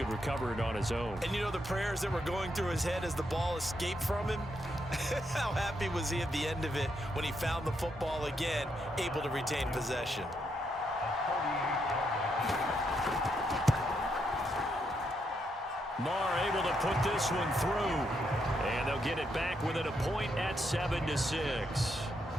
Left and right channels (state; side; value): normal; both; correlation 0.79